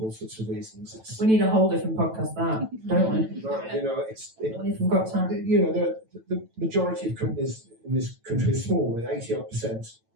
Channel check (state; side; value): late; left; 9.1 ms